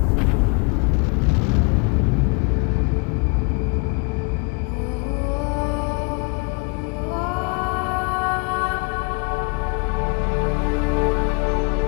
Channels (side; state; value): right; quieter; 31.6 dB